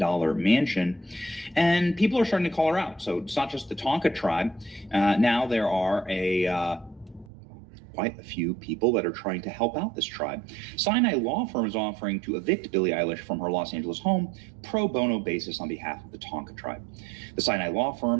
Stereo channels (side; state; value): left; drops out; at 7.3 s